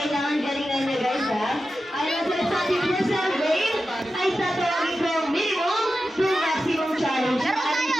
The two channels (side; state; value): both; normal; correlation 0.92